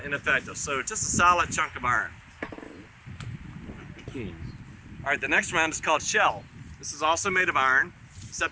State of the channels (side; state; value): both; identical; correlation 1.00